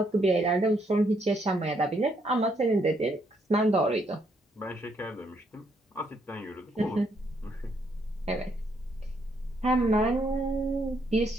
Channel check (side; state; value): both; normal; correlation 0.73